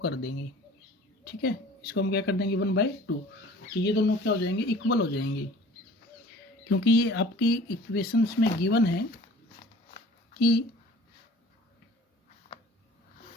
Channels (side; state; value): both; normal; correlation 0.47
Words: कर देंगे। ठीक है, इसको हम क्या कर देंगे, 1/2। तो ये दोनों क्या हो जाएंगे, इक्वल हो जाएंगे। क्योंकि ये आपकी इक्वेशंस में गिवन है कि